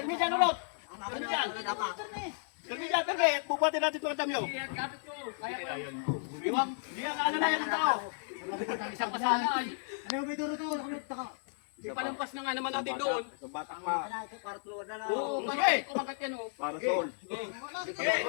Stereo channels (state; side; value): silent; right; 55 dB below the other